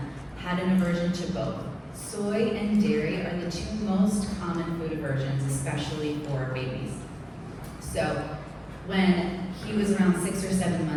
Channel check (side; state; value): both; identical; correlation 1.00